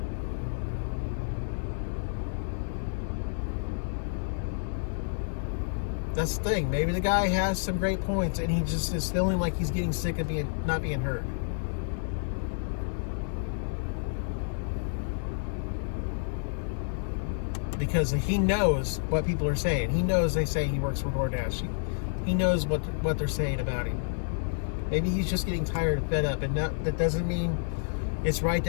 That's the thing. Maybe the guy has some great points and he just is feeling like he's getting sick of not being heard. Because he knows what people are saying. He knows they say he works for DoorDash. He knows what they're saying about him. Maybe he's just getting tired and fed up. And that doesn't mean it's right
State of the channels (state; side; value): silent; right; digital silence